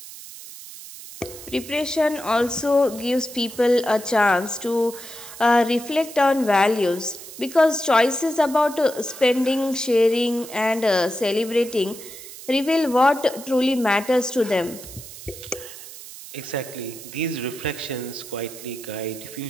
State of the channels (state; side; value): noise; right; hiss, 14 dB below the sound